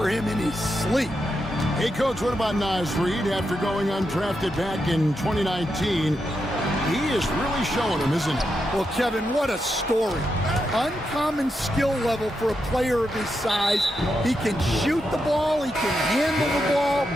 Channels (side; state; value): both; normal; correlation 0.85